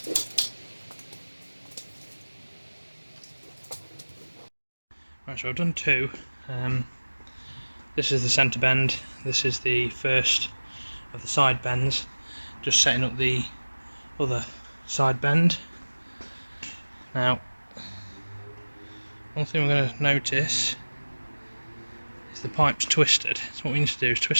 Right, so I've done two. This is the centre bend, this is the first of the side bends, just setting up the other side bend. Now, one thing we're going to notice is the pipe's twisted, so what we need to do is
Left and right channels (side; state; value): both; inverted; correlation -1.00